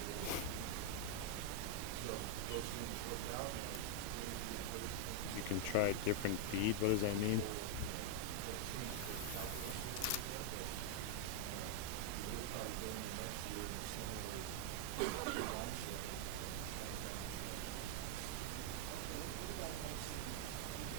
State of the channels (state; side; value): different; both; correlation 0.00